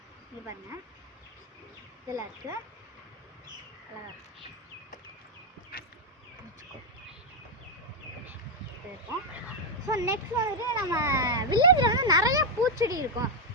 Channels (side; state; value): both; normal; correlation 0.01